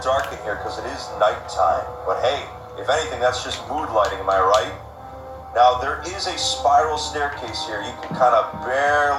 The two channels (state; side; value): identical; both; correlation 1.00